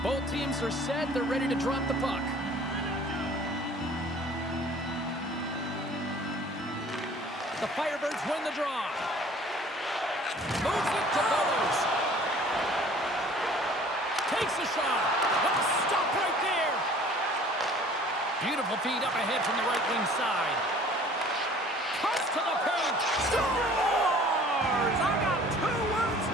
Both teams are set. They're ready to drop the puck. The Firebirds win the draw. Moves it to Bowers. Takes a shot. Oh, stop right there. Beautiful feed up ahead from the right wing side. Cuts to the paint. Scores! I got 2 words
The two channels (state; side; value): normal; both; correlation 0.50